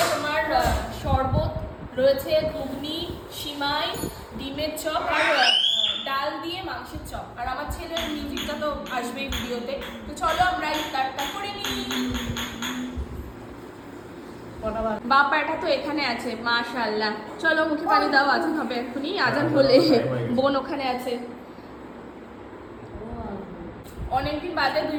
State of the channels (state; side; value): identical; both; correlation 1.00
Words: তোমার শরবত, রয়েছে ঘুগনি, সিমাই, ডিমের চপ আর ডাল দিয়ে মাংসের চপ। আর আমার ছেলের মিউজিকটা তো আসবেই ভিডিওতে। তো চলো আমরা ইফতারটা করে নিই। বাবা এটা তো এখানে আছে, মাশাআল্লাহ। চলো মুখে পানি দাও, আজান হবে এক্ষুনি। আজান হলে বোন ওখানে আছে। অনেকদিন বাদে